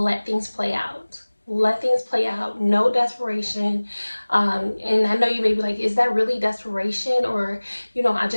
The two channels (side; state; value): both; inverted; correlation -1.00